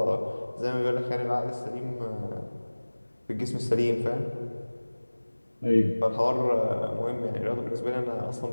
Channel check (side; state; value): both; inverted; correlation -1.00